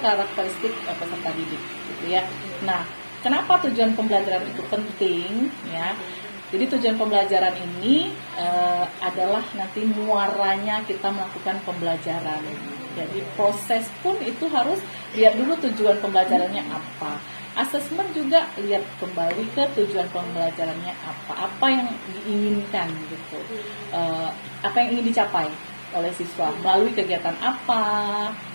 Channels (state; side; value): inverted; both; correlation -1.00